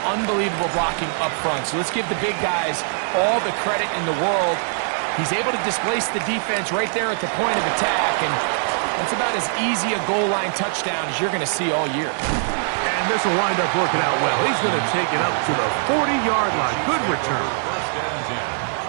unbelievable blocking up front. So let's give the big guys all the credit in the world. He's able to displace the defense right there at the point of attack, and that's about as easy a goal line touchdown as you're going to see all year. And this will wind up working out well. He's going to take it up to the 40-yard line. Good return. First and 10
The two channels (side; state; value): left; silent; 62 dB below the other